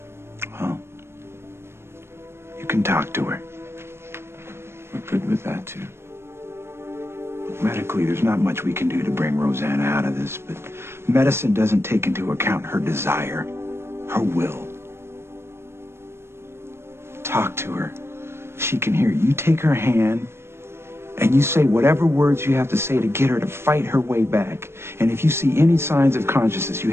Well, you can talk to her. We're good with that, too. Medically, there's not much we can do to bring Rosanna out of this, but medicine doesn't take into account her desire, her will. Talk to her. She can hear you. You take her hand, and you say whatever words you have to say to get her to fight her way back. And if you see any signs of consciousness, you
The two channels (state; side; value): late; left; 0.12 ms